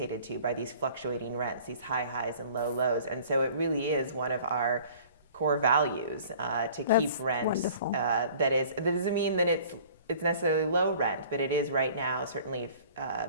to by these fluctuating rents, these high highs and low lows. And so it really is one of our core values to keep rent. Wonderful. That doesn't mean that it's necessarily low rent, but it is right now certainly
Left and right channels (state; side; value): inverted; both; correlation -0.49